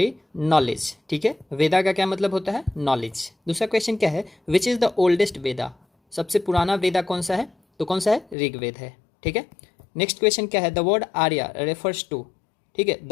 नॉलेज। ठीक है, वेदा का क्या मतलब होता है, नॉलेज। दूसरा क्वेश्चन क्या है, विच इज़ द ओल्डेस्ट वेदा। सबसे पुराना वेदा कौन सा है, तो कौन सा है, ऋग्वेद है। ठीक है, नेक्स्ट क्वेश्चन क्या है, the word Arya refers to. ठीक है, the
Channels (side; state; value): right; drops out; at 8.3 s